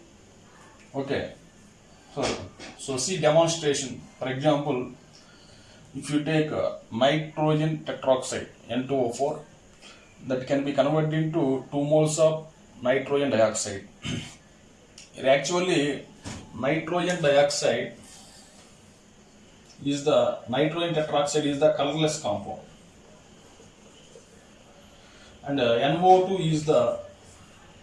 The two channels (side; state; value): both; identical; correlation 1.00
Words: Okay. So see demonstration. For example, if you take nitrogen tetroxide N2O4, that can be converted into 2 moles of nitrogen dioxide. Actually, nitrogen dioxide is the nitrogen tetroxide is the colorless compound, and NO2 is the